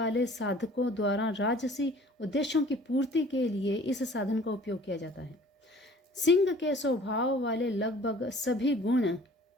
साधकों द्वारा राजसी उद्देश्यों की पूर्ति के लिए इस साधन का उपयोग किया जाता है। सिंह के स्वभाव वाले लगभग सभी गुण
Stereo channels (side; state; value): both; normal; correlation 0.50